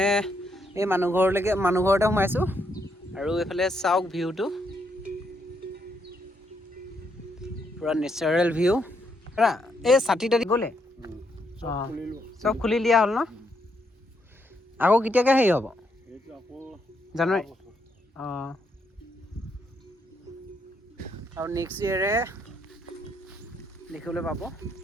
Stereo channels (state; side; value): normal; both; correlation 0.76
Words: এই মানুহ ঘৰতে সোমাইছোঁ আৰু এইফালে চাওক ভিউটো পূৰা নেচাৰেল ভিউ এই ছাতি তাতি গ'লে অঁ চব খুলি দিয়া হ'ল ন আকৌ কেতিয়াকৈ হেৰি হ'ব জানুৱাৰী অঁ আৰু নেক্সট ইয়েৰে দেখিবলৈ পাব